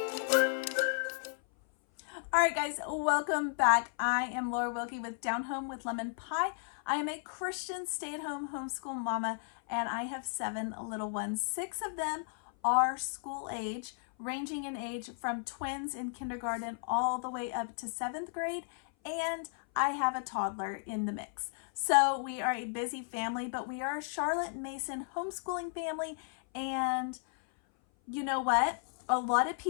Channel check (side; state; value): right; silent; 55 dB below the other